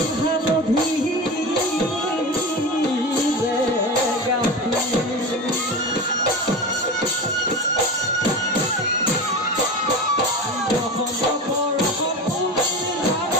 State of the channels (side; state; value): both; normal; correlation 0.27